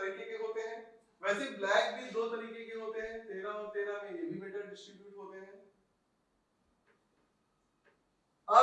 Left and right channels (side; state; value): both; identical; correlation 1.00